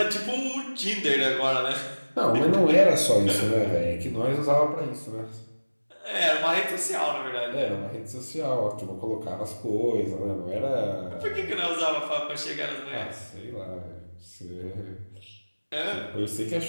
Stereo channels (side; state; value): both; inverted; correlation -1.00